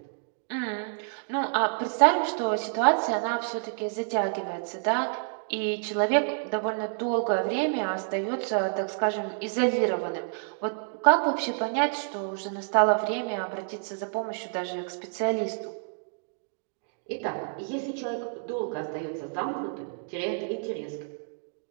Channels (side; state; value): left; silent; digital silence